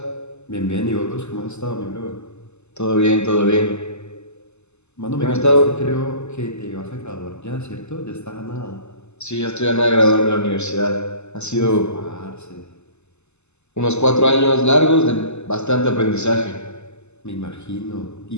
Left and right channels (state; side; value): late; right; 0.82 ms